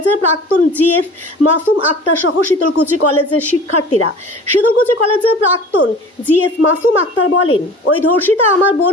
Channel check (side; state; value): both; normal; correlation 0.42